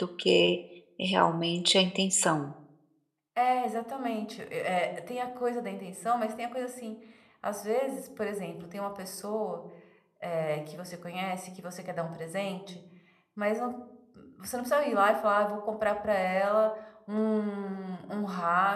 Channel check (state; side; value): identical; both; correlation 1.00